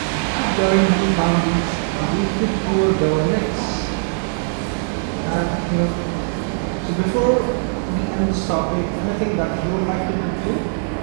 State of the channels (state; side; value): silent; left; digital silence